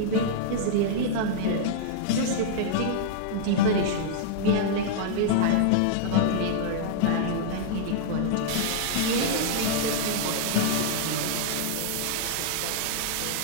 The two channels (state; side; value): different; both; correlation -0.02